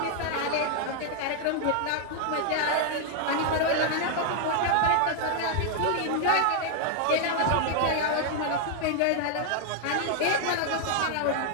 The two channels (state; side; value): different; both; correlation 0.00